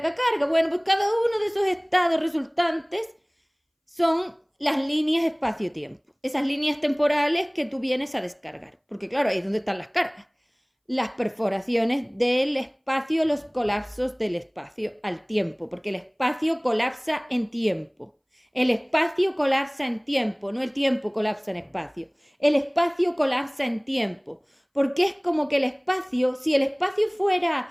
carga. Bueno, pues cada uno de esos estados resultantes son las líneas espacio-tiempo. Esas líneas temporales que tú vienes a descargar. Porque claro, ahí es donde están las cargas. Las perforaciones del espacio, los colapsos del espacio al tiempo. Porque el espacio colapsa en tiempo. El espacio colapsa en tiempo, no el tiempo colapsa en espacio. El espacio colapsa en tiempo, porque es como que el espacio, si el espacio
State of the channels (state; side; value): identical; both; correlation 1.00